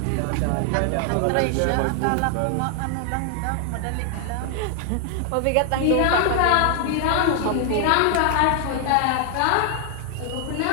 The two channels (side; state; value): both; different; correlation 0.00